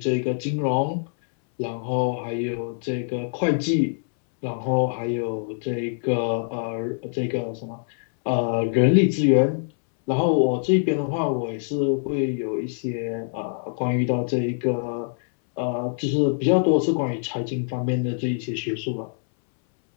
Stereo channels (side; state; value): right; silent; 62 dB below the other